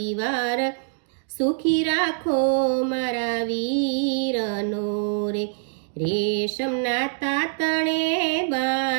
સુખી રાખો મારા વીરનો રે, રેશમના તાતણે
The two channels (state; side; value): silent; left; digital silence